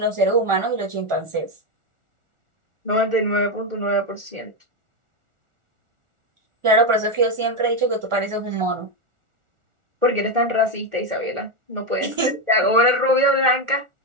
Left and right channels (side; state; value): left; late; 1.4 ms